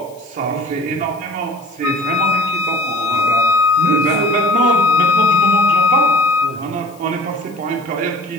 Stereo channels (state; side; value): noise; left; hiss, 27 dB below the sound